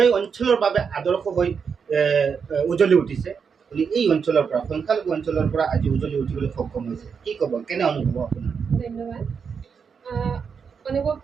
অঞ্চলৰ বাবে আদৰ্শ হৈ উজলি উঠিছে। এই অঞ্চলৰ পৰা, সংখ্যালঘু অঞ্চলৰ পৰা আজি উজলি উঠিবলৈ সক্ষম হৈছে। কি ক'ব, কেনে অনুভৱ আপোনাৰ? ধন্যবাদ।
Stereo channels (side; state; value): left; quieter; 6.2 dB